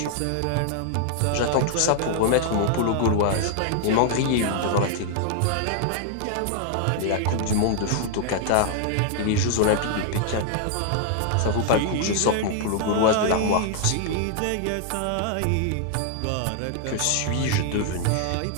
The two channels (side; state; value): both; different; correlation 0.00